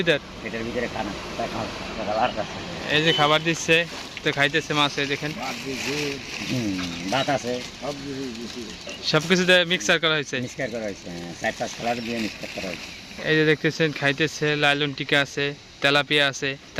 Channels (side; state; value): both; identical; correlation 1.00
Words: ভিতরে খানা এই যে খাবার দিচ্ছে, তো খাইতেছে মাছ। এই দেখেন ভাত আছে, সবকিছু মিক্সার করা হয়েছে। 4-5 কালার দিয়ে মিক্সার করা হয়েছে। এই যে দেখতেছেন খাইতেছে। লালন টিকা আছে, তেলাপিয়া আছে।